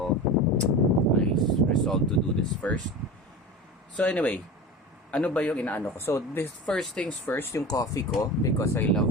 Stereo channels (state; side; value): normal; both; correlation 0.31